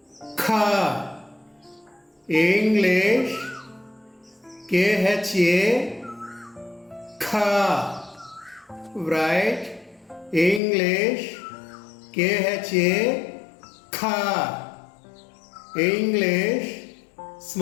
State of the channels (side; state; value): right; drops out; at 10.6 s